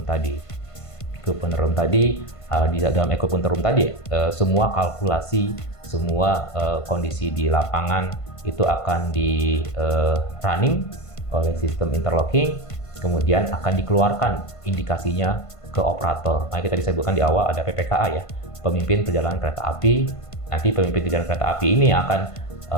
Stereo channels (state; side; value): late; right; 1.5 ms